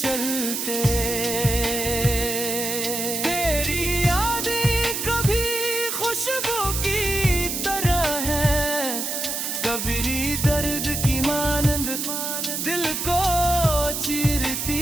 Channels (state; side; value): noise; right; hiss, 2 dB below the sound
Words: तेरी यादें कभी खुशबू की तरह है, कभी दर्द की मानंद दिल को चीरती